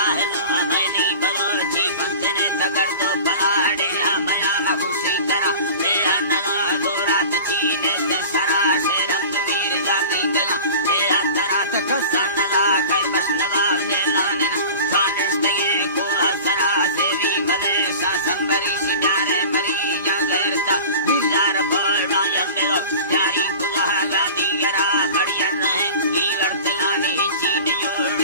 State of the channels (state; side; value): inverted; both; correlation -0.37